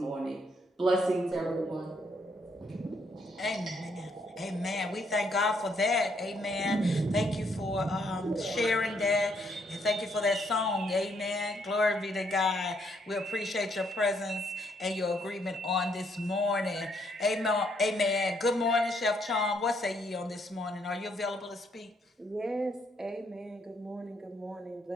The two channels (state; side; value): normal; both; correlation 0.71